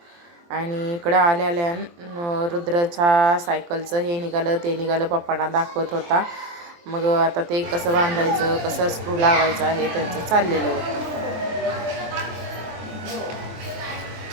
आणि इकडं आल्या रुद्राच्या सायकलचं हे निघालं ते निघालं, पप्पांना दाखवत होता. मग आता ते कसं बांधायचं, कसं स्क्रू लावायचं आहे त्यांचं चाललेलं होतं.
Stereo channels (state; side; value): late; left; 23 ms